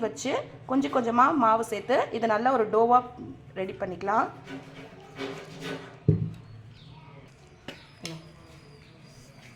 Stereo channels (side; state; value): both; identical; correlation 1.00